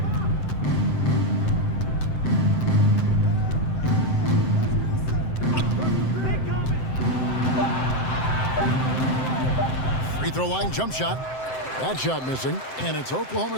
Free throw line jump shot. That shot missing. And it's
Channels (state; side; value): late; right; 7.7 ms